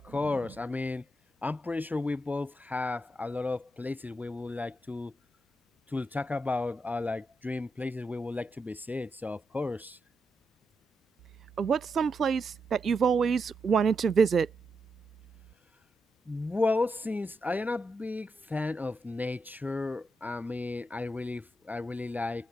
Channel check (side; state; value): both; normal; correlation 0.84